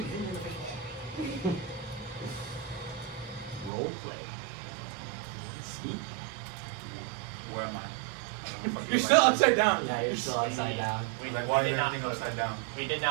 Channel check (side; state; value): left; drops out; at 3.7 s